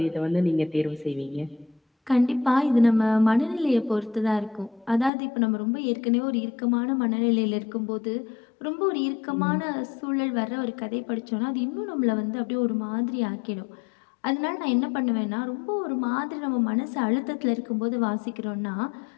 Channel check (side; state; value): right; drops out; at 5.1 s